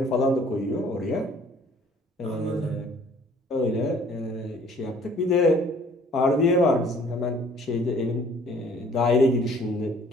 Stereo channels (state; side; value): normal; both; correlation 0.56